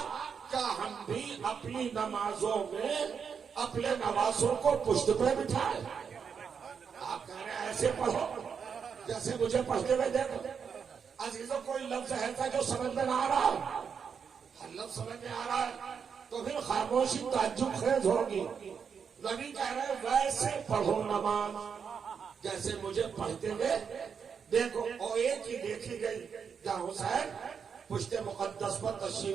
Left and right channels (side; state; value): left; quieter; 6.6 dB